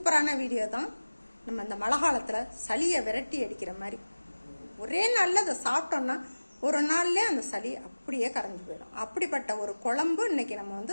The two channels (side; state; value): both; inverted; correlation -1.00